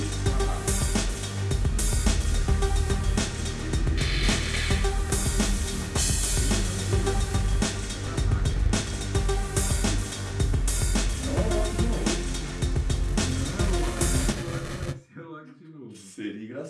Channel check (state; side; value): identical; both; correlation 1.00